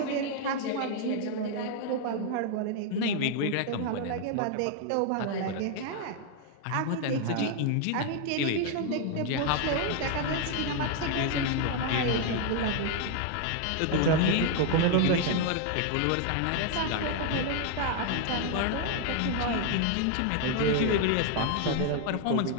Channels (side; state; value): both; different; correlation 0.00